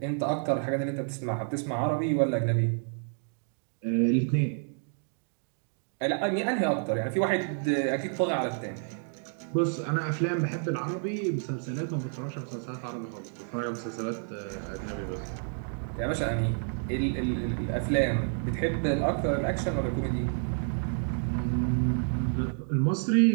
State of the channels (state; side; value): silent; left; 58 dB below the other